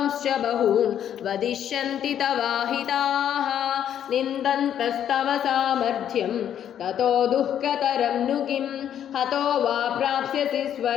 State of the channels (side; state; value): right; quieter; 9.9 dB